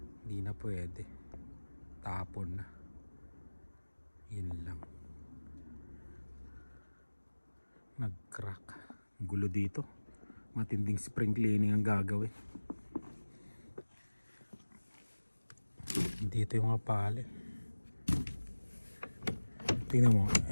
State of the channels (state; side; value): inverted; both; correlation -1.00